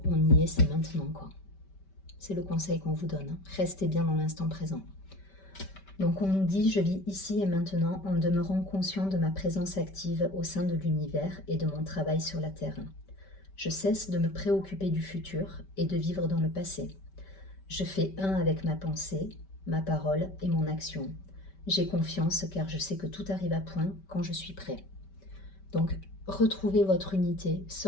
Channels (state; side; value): late; right; 5.2 ms